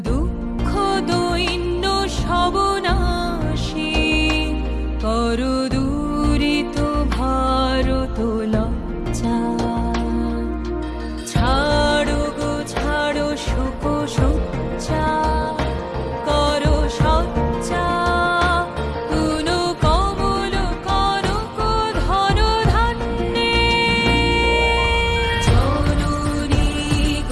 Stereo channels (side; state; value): both; identical; correlation 1.00